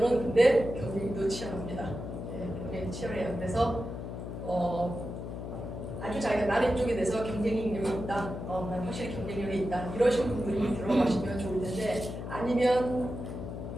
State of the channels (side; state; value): left; noise; hum, 7 dB below the sound